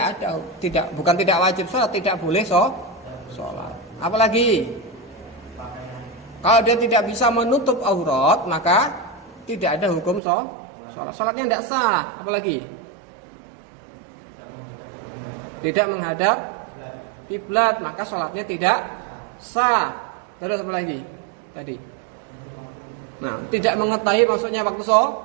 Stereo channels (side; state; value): left; drops out; at 10.2 s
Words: bukan tidak wajib sholat, tidak boleh sholat. Apalagi kalau dia tidak bisa menutup aurat, maka tidak ada hukum sholat. Sholatnya tidak sah. Apalagi tidak menghadap kiblat, maka sholatnya tidak sah. Terus apa lagi tadi? Nah, tidak mengetahui maksudnya waktu